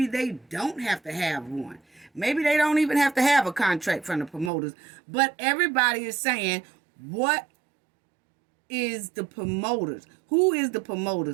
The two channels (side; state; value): left; drops out; at 4.5 s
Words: they don't have to have one. Maybe they don't even have to have a contract from the promoters. But everybody is saying, what is the promoters? Who is the